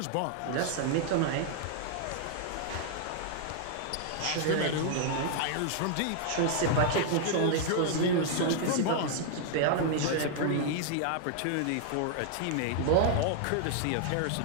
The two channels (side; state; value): both; different; correlation -0.01